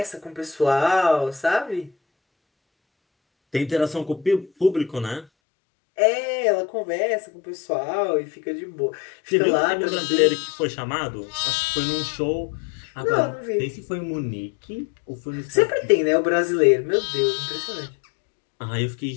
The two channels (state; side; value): drops out; right; at 5.2 s